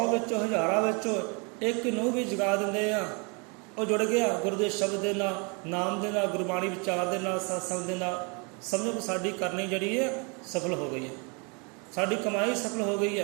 ਵਿੱਚੋਂ, ਹਜ਼ਾਰਾਂ ਵਿੱਚੋਂ ਇੱਕ ਨੂੰ ਵੀ ਜਗਾ ਦਿੰਦੇ ਆ, ਉਹ ਜੁੜ ਗਿਆ ਗੁਰੂ ਦੇ ਸ਼ਬਦ ਦੇ ਨਾਲ, ਨਾਮ ਦੇ ਨਾਲ, ਗੁਰਬਾਣੀ ਵਿਚਾਰ ਦੇ ਨਾਲ, ਸਤਸੰਗ ਦੇ ਨਾਲ। ਸਮਝੋ ਕਿ ਸਾਡੀ ਕਰਨੀ ਜਿਹੜੀ ਹੈ ਸਫਲ ਹੋ ਗਈ ਹੈ, ਸਾਡੀ ਕਮਾਈ ਸਫਲ ਹੋ ਗਈ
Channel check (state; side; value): quieter; left; 33.1 dB